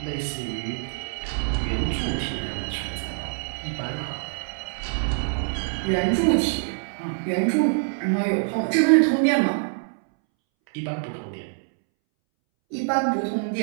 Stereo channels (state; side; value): silent; left; 62 dB below the other